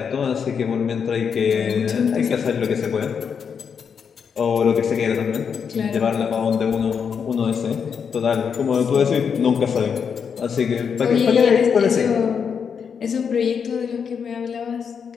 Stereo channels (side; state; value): right; quieter; 6.7 dB